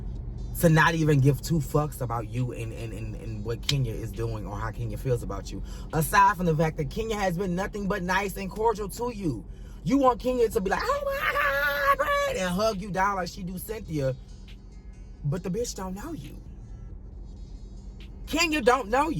to not even give two fucks about you and what Kenya is doing or how Kenya feels about you. Aside from the fact that Kenya has been nothing but nice and cordial to you. You want Kenya to be like, oh my God, Brad, and hug you down like she do Cynthia. But the bitch don't know you. Kenya don't know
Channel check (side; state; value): both; identical; correlation 1.00